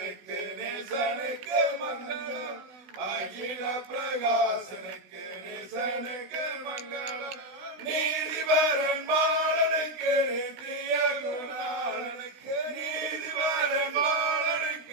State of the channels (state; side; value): late; left; 16 ms